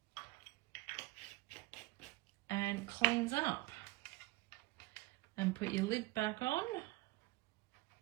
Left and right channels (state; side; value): quieter; left; 21.3 dB